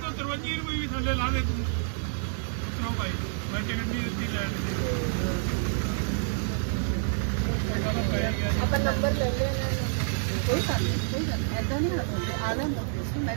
53 ਰੁਪਏ ਵੀ ਥੱਲੇ ਲਾ ਦੇ ਤੂੰ ਉਤਰੋ ਭਾਈ ਮੈਂ ਟਿਕਟ ਨਹੀਂ ਦਿੱਤੀ ਲੈ ਆਪਾਂ ਨੰਬਰ ਲੈ ਲੈਣਾ ਕੋਈ ਗੱਲ ਨਹੀਂ ਐਦਾਂ ਨਹੀਂ ਹੁੰਦੀ ਆਲਾ ਨੂੰ ਮੈਂ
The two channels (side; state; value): left; silent; 59 dB below the other